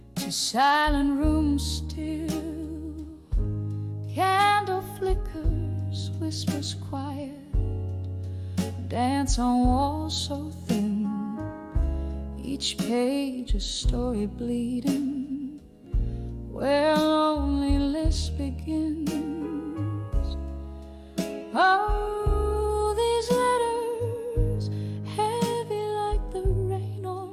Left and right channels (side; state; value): both; identical; correlation 1.00